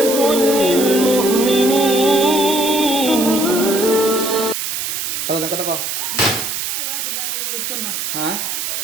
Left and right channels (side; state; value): right; noise; hiss, 3 dB below the sound